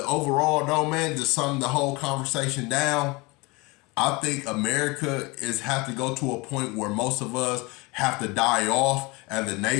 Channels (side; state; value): right; quieter; 25.2 dB